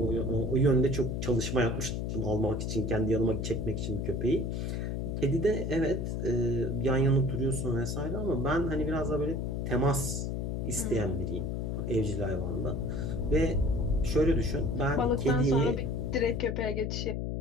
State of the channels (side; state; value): left; noise; hum, 2 dB below the sound